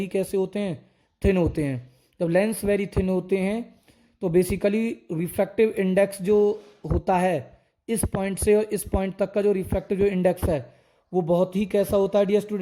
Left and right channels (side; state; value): both; identical; correlation 1.00